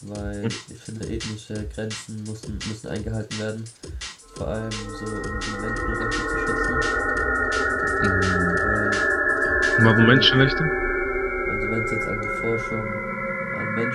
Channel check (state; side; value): identical; both; correlation 1.00